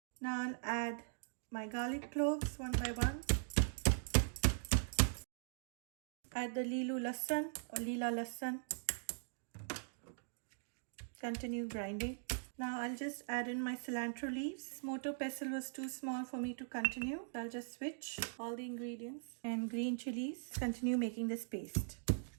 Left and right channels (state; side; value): silent; left; digital silence